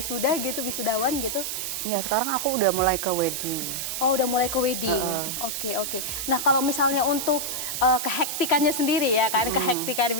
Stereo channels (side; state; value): right; noise; hiss, 3 dB below the sound